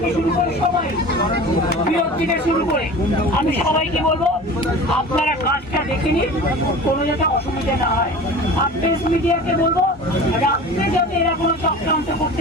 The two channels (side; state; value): both; normal; correlation 0.37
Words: শুরু করে, সবাই বিরোধ থেকে শুরু করে, আমি সবাইকে বলবো আপনারা কাজটা দেখে নিন, কোনো যাতে অসুবিধা না হয়। আর প্রেস মিডিয়াকে বলবো রাত্রে যাতে এরা কোনো চক্রান্ত